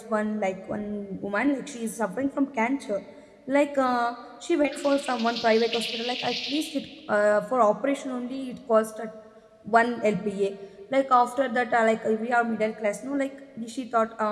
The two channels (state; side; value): identical; both; correlation 1.00